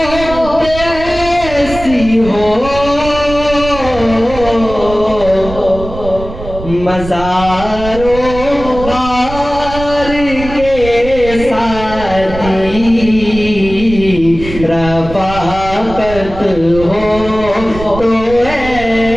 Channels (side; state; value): right; noise; rumble, 11 dB below the sound